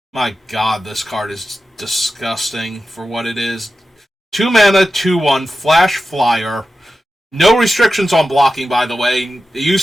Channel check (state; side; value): normal; both; correlation 0.92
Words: My god, this card is disgusting for what it is. 2 mana, 2/1, Flash Flyer. No restrictions on blocking, by the way. It